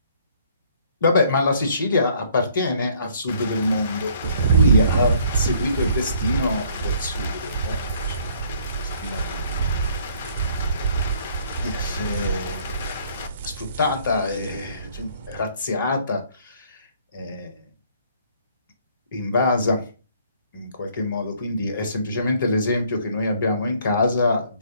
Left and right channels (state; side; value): inverted; both; correlation -0.61